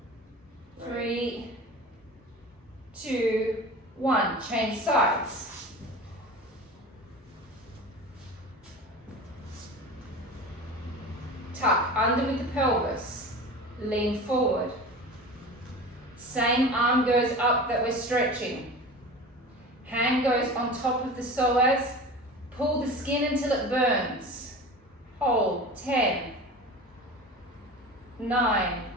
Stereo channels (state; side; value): normal; both; correlation 0.34